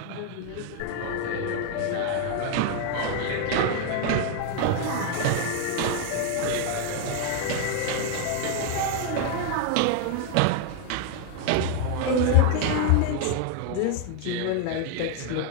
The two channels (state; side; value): different; both; correlation 0.01